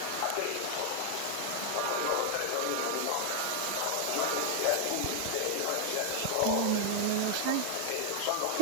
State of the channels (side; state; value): both; different; correlation 0.00